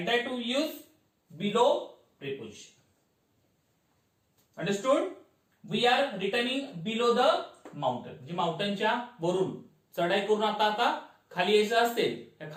that to use below preposition. Understood? We are returning below the mountain, म्हणजे माउंटनच्या वरून चढाई करून आता खाली यायचं असेल,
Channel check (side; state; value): both; identical; correlation 1.00